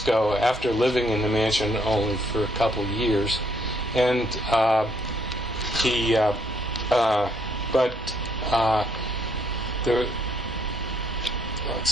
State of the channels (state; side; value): normal; both; correlation 0.70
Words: after living in the mansion only for a couple years, and